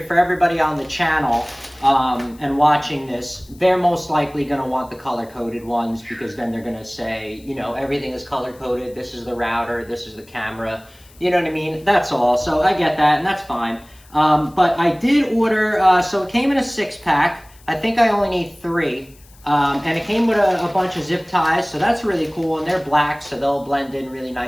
for everybody on the channel and watching this, they're most likely going to want the color-coded ones because then they're going to say, everything is color-coded. This is the router. This is the camera. You know what I mean? That's all. So I get that, and that's fine. But I did order, so it came in a 6-pack. I think I only need 3. And it came with a bunch of zip ties, so that's really cool. And they're black, so they'll blend in really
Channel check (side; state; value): left; noise; hiss, 27 dB below the sound